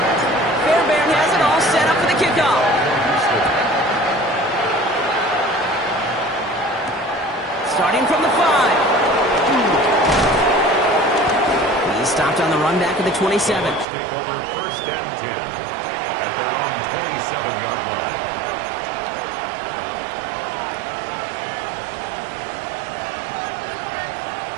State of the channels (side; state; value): left; drops out; at 13.9 s